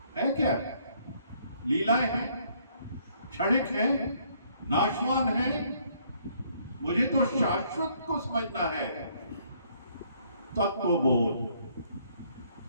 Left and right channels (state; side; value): inverted; both; correlation -0.66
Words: है क्या? लीलाएं हैं, क्षणिक है, नाशवान है। मुझे तो शाश्वत को समझना है। तत्वबोध,